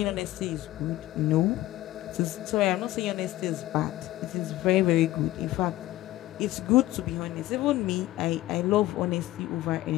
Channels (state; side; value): quieter; right; 16.1 dB